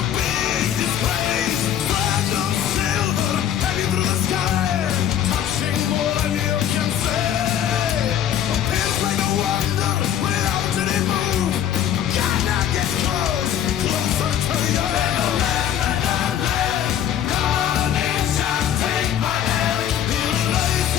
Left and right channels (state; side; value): quieter; right; 10.2 dB